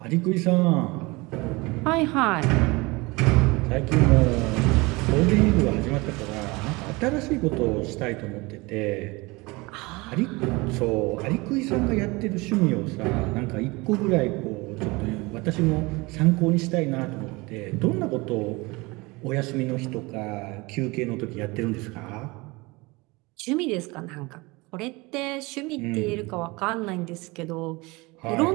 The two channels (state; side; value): quieter; left; 24.2 dB